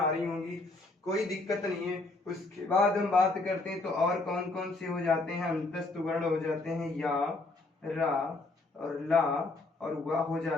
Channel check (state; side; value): quieter; right; 3.2 dB